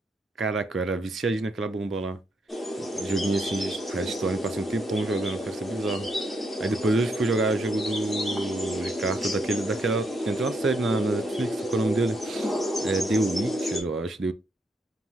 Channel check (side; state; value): both; normal; correlation 0.77